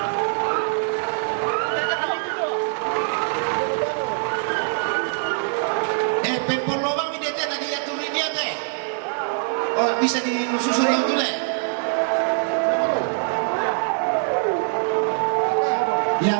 Pempol lobang ini dia tadi ya turun dia teh. Oh, bisa disusun yang dulu.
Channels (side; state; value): left; silent; digital silence